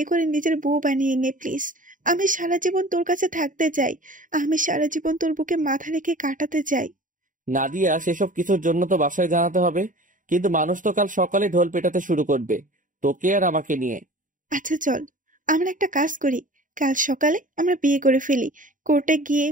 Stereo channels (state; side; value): late; left; 0.38 ms